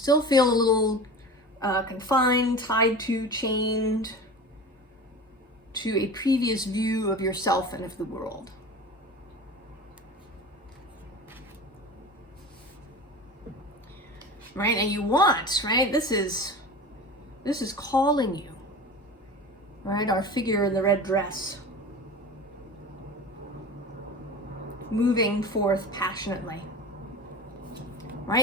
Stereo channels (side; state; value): both; normal; correlation 0.33